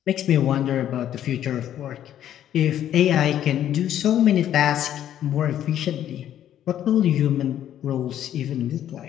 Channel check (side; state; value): right; quieter; 11.1 dB